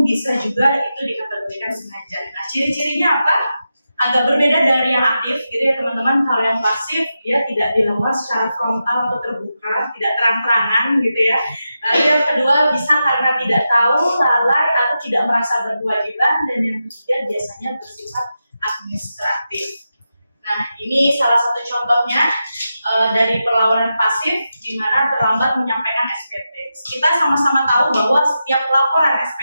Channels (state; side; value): inverted; both; correlation -0.89